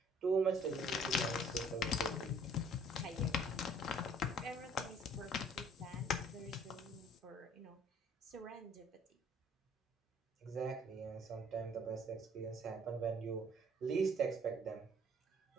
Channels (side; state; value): both; normal; correlation 0.57